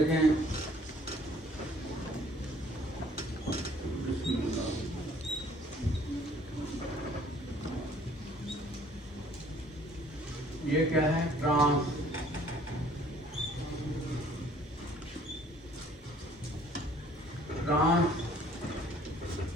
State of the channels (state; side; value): normal; both; correlation 0.57